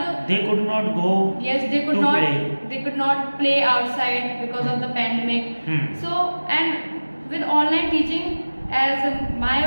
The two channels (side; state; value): both; inverted; correlation -1.00